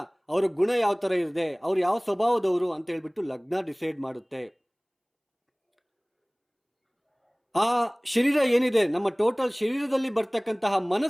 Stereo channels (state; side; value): identical; both; correlation 1.00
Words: ಅವರ ಗುಣ ಯಾವ ಥರ ಇದೆ, ಅವ್ರು ಯಾವ ಸ್ವಭಾವದವರು ಅಂತ ಹೇಳ್ಬಿಟ್ಟು ಲಗ್ನ ಡಿಸೈಡ್ ಮಾಡುತ್ತೆ. ಆ ಶರೀರ ಏನಿದೆ, ನಮ್ಮ ಟೋಟಲ್ ಶರೀರದಲ್ಲಿ ಬರ್ತಕ್ಕಂತಹ